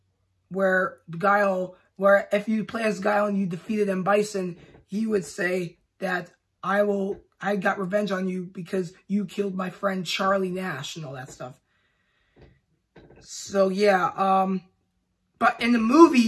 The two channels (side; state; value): both; identical; correlation 1.00